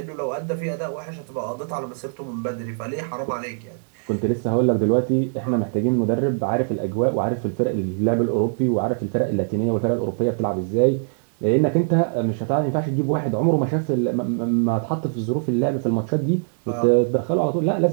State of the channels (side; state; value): left; silent; digital silence